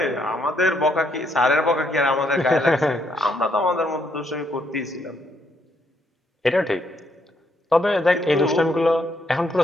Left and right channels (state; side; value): normal; both; correlation 0.73